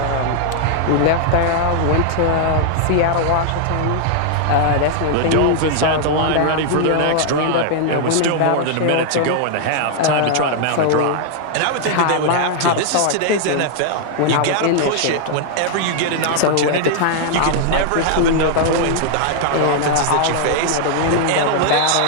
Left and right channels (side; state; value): both; different; correlation -0.01